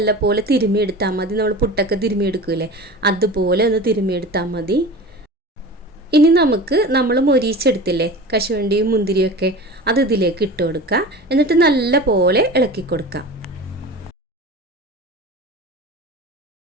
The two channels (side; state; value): both; normal; correlation 0.34